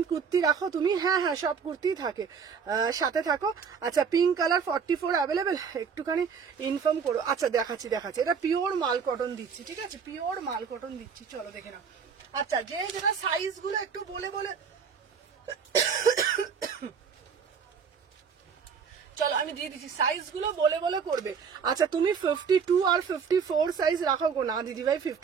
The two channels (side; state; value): left; quieter; 6.4 dB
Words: কুর্তি রাখো তুমি? হ্যাঁ হ্যাঁ, সব কুর্তি থাকে, সাথে থাকো। আচ্ছা পিঙ্ক কালার 44 অ্যাভেলেবেল, একটুখানি ইনফর্ম করো। আচ্ছা দেখাচ্ছি, এটা পিওর মাল কটন দিচ্ছি, ঠিক আছে? পিওর মাল কটন দিচ্ছি, চলো দেখে নাও। আচ্ছা যে যেটা সাইজ গুলো একটু বলে বলে চলো আমি দিয়ে দিচ্ছি, সাইজ গুলো বলে বলে করবে। আচ্ছা তুমি 52 আর 54 সাইজ রাখো গো? না দিদি ভাই